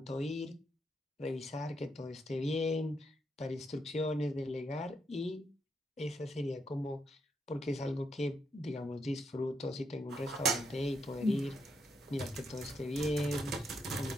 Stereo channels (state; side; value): normal; both; correlation 0.79